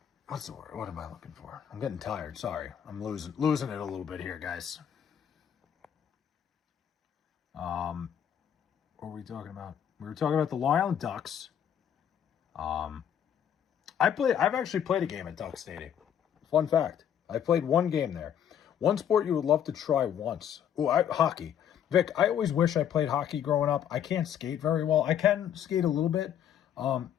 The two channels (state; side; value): quieter; right; 9.3 dB